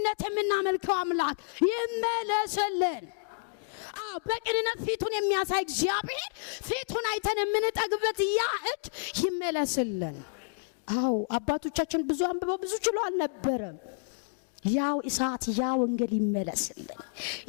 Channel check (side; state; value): right; silent; digital silence